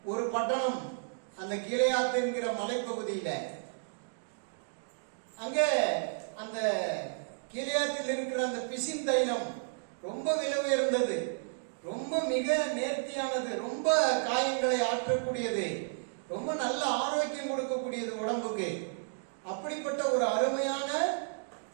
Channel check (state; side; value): silent; left; digital silence